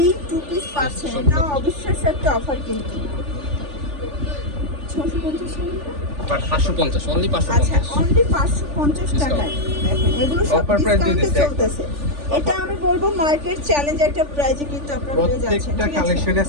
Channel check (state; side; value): late; left; 3.4 ms